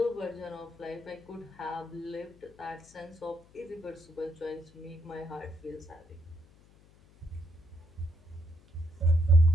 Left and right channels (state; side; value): noise; left; hum, 26 dB below the sound